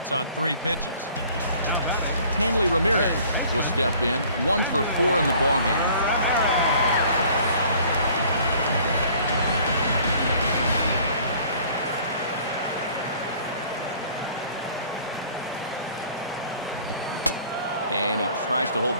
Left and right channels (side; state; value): both; inverted; correlation -0.54